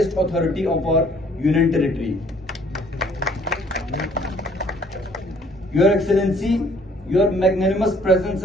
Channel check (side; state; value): both; normal; correlation 0.60